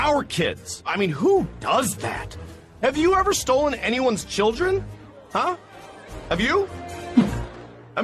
kids. I mean, who does that? Have you ever stolen anyone's children? Huh? Have you? I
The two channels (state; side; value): identical; both; correlation 1.00